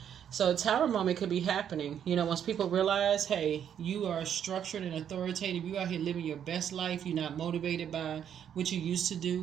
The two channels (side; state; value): left; quieter; 9.0 dB